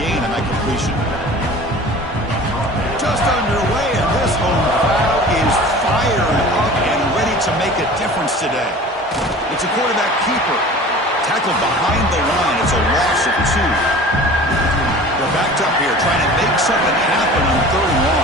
gain on that completion. Just underway, and this home crowd is fired up and ready to make a difference today. It's a quarterback keeper. Tackled behind the line. It's a loss of 2. They're backed up here, trying to make something happen on 3rd and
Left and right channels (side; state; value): both; normal; correlation 0.41